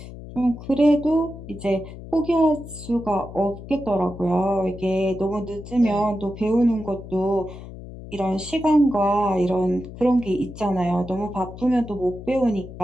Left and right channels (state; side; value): noise; left; hum, 13 dB below the sound